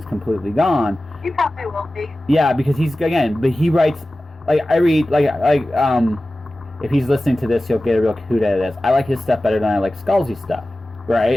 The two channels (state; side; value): normal; both; correlation 0.96